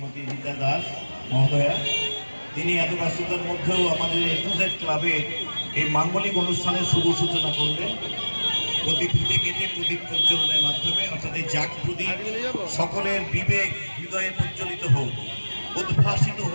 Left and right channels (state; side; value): inverted; both; correlation -1.00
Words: রীতা দাস মহোদয়া। তিনি এত ব্যস্ততার মধ্যেও আমাদের A2Z ক্লাবে এই মাঙ্গলিক অনুষ্ঠানের শুভ সূচনা করলেন প্রদীপ কেটে প্রদীপ প্রজ্বলনের মাধ্যমে, অর্থাৎ এই জাগ প্রদীপ সকলের বিবেক হৃদয়ে প্রজ্বলিত হোক, উদ্ভাসিত